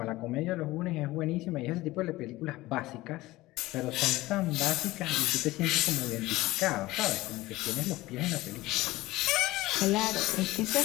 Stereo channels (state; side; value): quieter; right; 18.6 dB